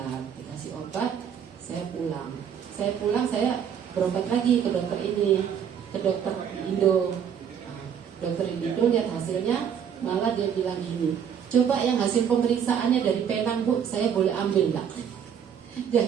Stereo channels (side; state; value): left; quieter; 8.1 dB